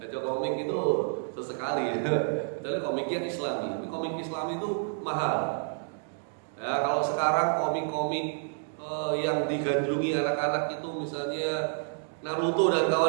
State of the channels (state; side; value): silent; left; digital silence